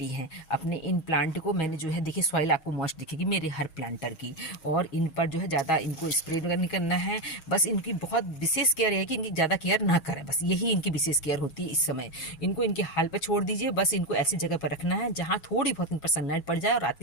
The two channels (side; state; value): right; late; 6.3 ms